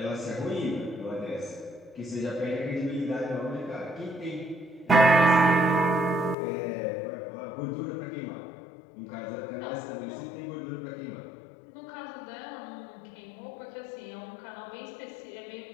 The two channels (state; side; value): drops out; right; at 6.4 s